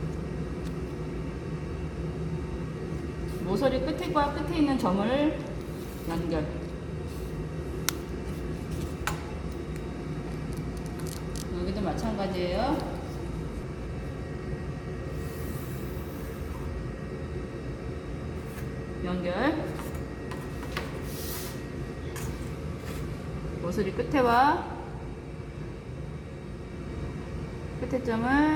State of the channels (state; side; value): identical; both; correlation 1.00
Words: 모서리 끝과 끝에 있는 점을 연결. 여기도 마찬가지예요. 연결. 모서리 끝에와 끝에 점을